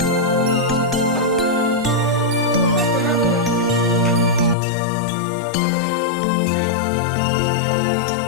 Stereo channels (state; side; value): drops out; right; at 4.5 s